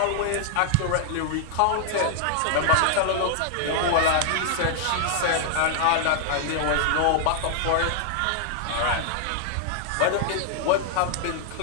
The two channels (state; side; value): different; both; correlation -0.01